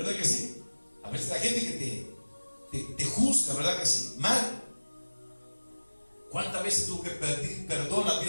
que sí? A veces la gente que te juzga, ¿verdad que sí? Mal. ¿Cuántas veces tuve que pedir perdón a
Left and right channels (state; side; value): inverted; both; correlation -1.00